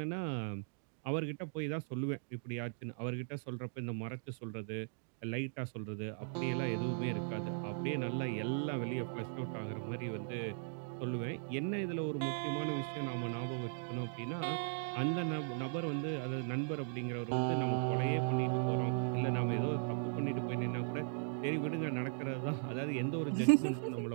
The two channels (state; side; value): silent; left; digital silence